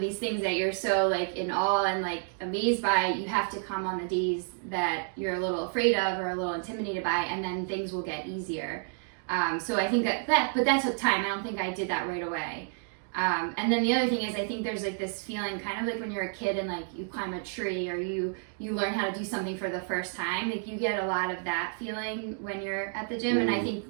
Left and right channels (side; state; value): left; silent; 58 dB below the other